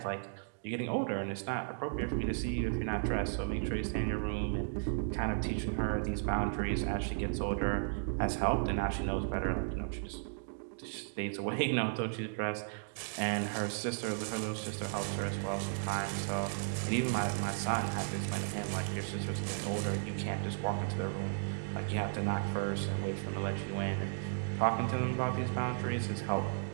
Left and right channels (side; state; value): left; silent; digital silence